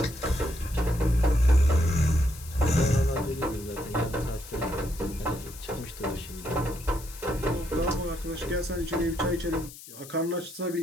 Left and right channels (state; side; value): noise; left; hiss, 16 dB below the sound